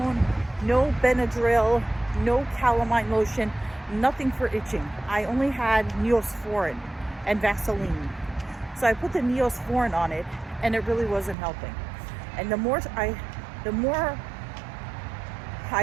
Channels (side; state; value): left; drops out; at 11.4 s